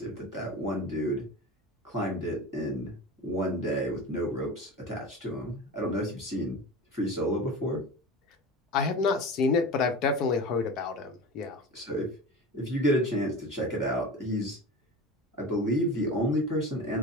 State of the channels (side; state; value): both; normal; correlation 0.31